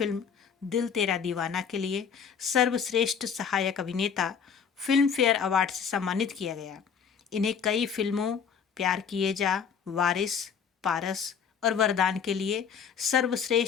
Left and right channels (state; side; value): quieter; right; 7.0 dB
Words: दिल तेरा दीवाना के लिए सर्वश्रेष्ठ सहायक अभिनेता फिल्म फेयर अवार्ड से सम्मानित किया गया। इन्हें कई फिल्मों प्यार किए जा, वारिस, पारस और वरदान के लिए